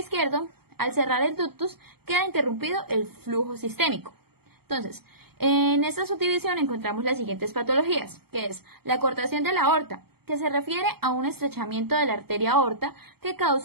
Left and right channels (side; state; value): left; late; 0.96 ms